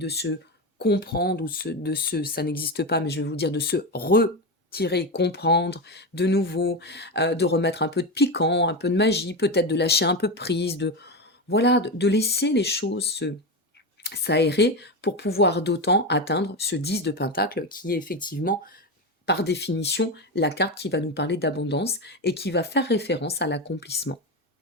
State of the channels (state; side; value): normal; both; correlation 0.16